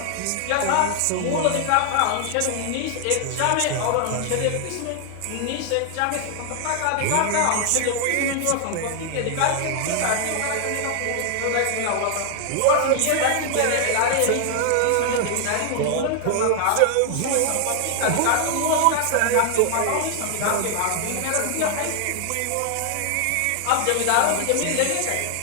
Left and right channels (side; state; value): both; different; correlation 0.00